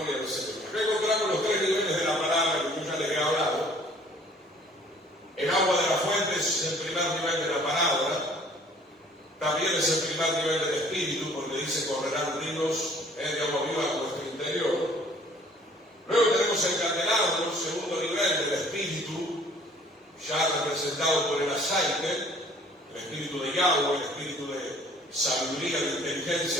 al Señor. Acá encontramos los 3 niveles de la palabra que yo ya les he hablado. El agua de la fuente es el primer nivel de la palabra. También es el primer nivel del Espíritu, porque dice correrán ríos de agua viva a nuestro interior. Luego tenemos el candelabro, el segundo nivel del Espíritu, ya representado por el aceite, el Espíritu de Yahweh, el Espíritu de sabiduría, de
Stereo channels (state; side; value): normal; both; correlation 0.55